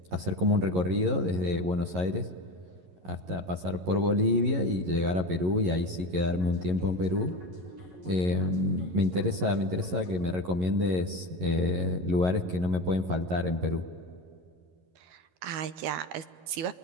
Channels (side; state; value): left; late; 11 ms